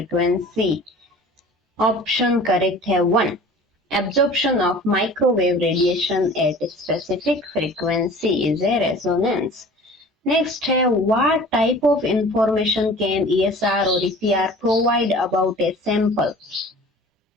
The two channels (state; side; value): normal; both; correlation 0.44